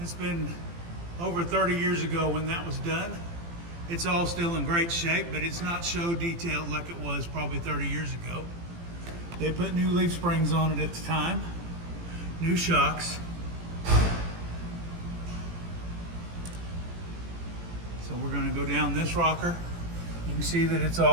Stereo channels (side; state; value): left; late; 18 ms